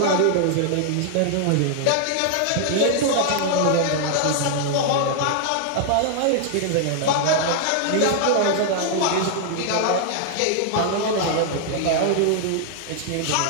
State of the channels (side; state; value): both; different; correlation -0.01